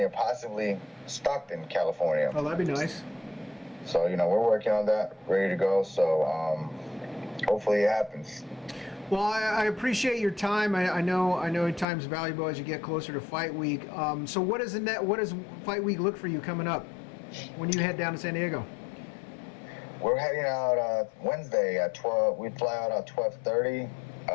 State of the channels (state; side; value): drops out; right; at 11.9 s